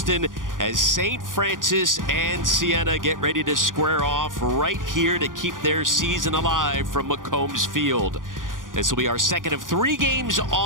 as St. Francis and Siena get ready to square off right here to keep their season alive from McCombs Field. This will be our second of 3 games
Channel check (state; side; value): late; left; 0.89 ms